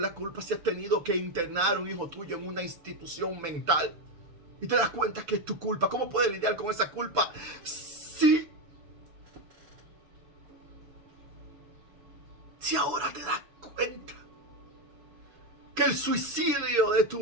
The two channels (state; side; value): late; left; 6.8 ms